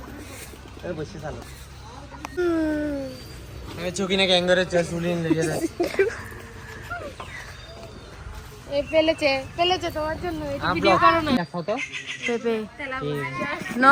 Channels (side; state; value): both; identical; correlation 1.00